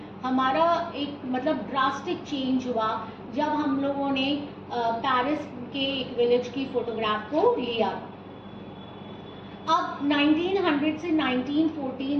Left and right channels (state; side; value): identical; both; correlation 1.00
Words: हमारा एक मतलब ड्रास्टिक चेंज हुआ जब हम लोगों ने पेरिस के एक विलेज की फोटोग्राफ को लिया। अब 1900 से